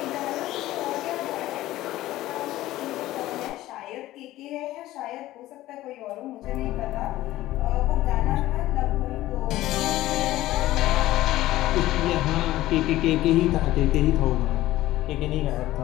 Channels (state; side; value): quieter; right; 15.8 dB